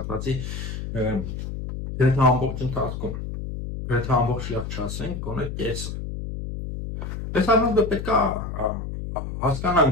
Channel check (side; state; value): left; noise; hum, 6 dB below the sound